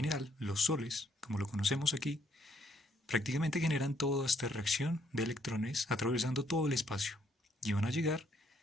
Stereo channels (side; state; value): both; normal; correlation 0.69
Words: los soles, como lo conocemos aquí, prácticamente generan toda esta reacción de electrones atravesando todo el espacio y van a llegar